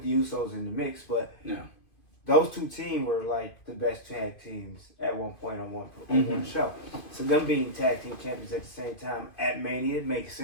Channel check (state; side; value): late; right; 2.5 ms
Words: the Usos in the mix, but those two teams were the best tag teams at one point on one show. So them being tag team champions at the same time at Mania makes